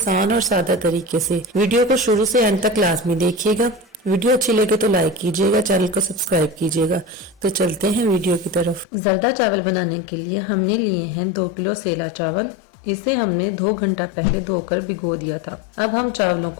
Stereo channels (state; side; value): drops out; right; at 8.8 s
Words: और सादा तरीके से। वीडियो को शुरू से एंड तक लाजमी देखिएगा। वीडियो अच्छी लगे तो लाइक कीजिएगा, चैनल को सब्सक्राइब कीजिएगा। तो चलते हैं वीडियो की तरफ। ज़र्दा चावल बनाने के लिए हमने लिए हैं 2 किलो सेला चावल। इसे हमने 2 घंटा पहले धोकर भिगो दिया था। अब हम चावलों